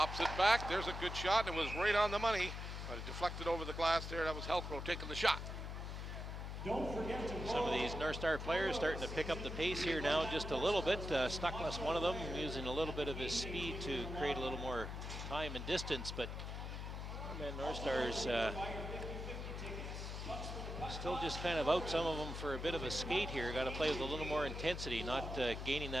it back. There's a good shot, and it was right on the money, but it deflected over the glass there. That was Helcro taking the shot. Some of these North Star players starting to pick up the pace here now just a little bit. Stuckless, one of them, using a little bit of his speed to create a little more time and distance, but man, North Stars still just kind of out some of them for a bit of a skate here. Got to play with a little more intensity, not gaining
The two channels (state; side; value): noise; left; hum, 6 dB below the sound